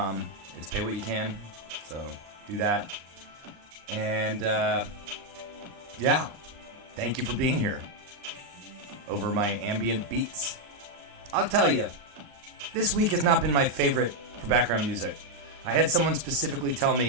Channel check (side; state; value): left; late; 39 ms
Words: It's pay what you can, so do that. And, yeah, thank you for being here over my ambient beats. I'll tell you, this week has not been my favorite for background music. I had someone specifically tell